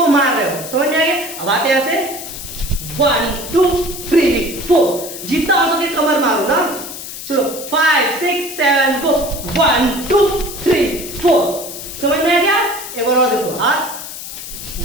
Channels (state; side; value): noise; left; hiss, 10 dB below the sound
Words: मार रहे हो, समझ में आ गया? अब आते ऐसे 1 2 3 4। जितना हो सके कमर मारो ना। चलो 5 6 7 गो 1 2 3 4। समझ में आ गया? एक बार और देखो, हाथ